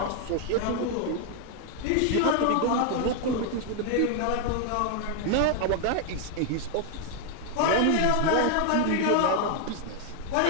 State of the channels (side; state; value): both; different; correlation 0.00